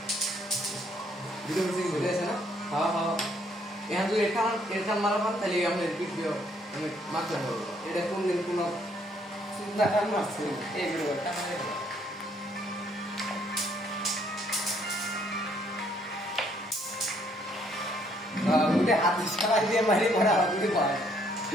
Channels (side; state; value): both; normal; correlation 0.67